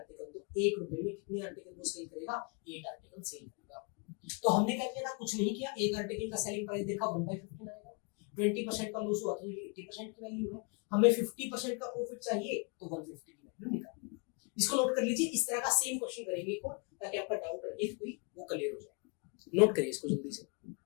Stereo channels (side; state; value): right; quieter; 34.0 dB